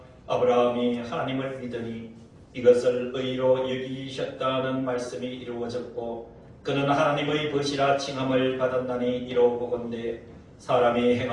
아브라함이 하나님을 믿으니 이것을 의로 여기셨다는 말씀이 이루어졌고 그는 하나님의 벗이라 칭함을 받았나니 이로보건대 사람이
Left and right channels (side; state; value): both; identical; correlation 1.00